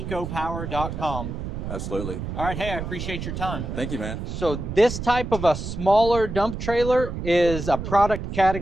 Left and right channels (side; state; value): right; noise; rumble, 6 dB below the sound